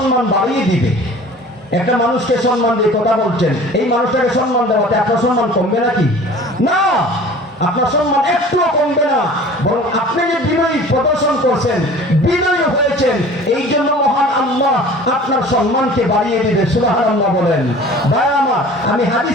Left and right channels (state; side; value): normal; both; correlation 0.44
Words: বাড়িয়ে দিবে। একটা মানুষকে সম্মান দিয়ে কথা বলছেন, এই মানুষটাকে সম্মান দেওয়াতে আপনার সম্মান কমবে নাকি? না, আপনার সম্মান একটুও কমবে না, বরং আপনি যে বিনয়ী প্রদর্শন করছেন, বিনয়ী হয়েছেন, এই জন্য মহান আল্লাহ আপনার সম্মানকে বাড়িয়ে দিবে। সুবহানাল্লাহ বলেন। ভাই আমার, আমি হাদিস